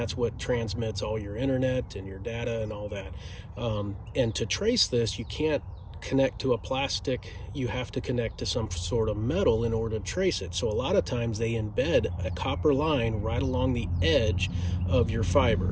what transmits all your internet and your data and all that. And to trace this, you can't connect to a plastic, you have to connect to some sort of metal in order to trace it. So a lot of times they embed a copper line right along the edge of your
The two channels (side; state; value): both; identical; correlation 1.00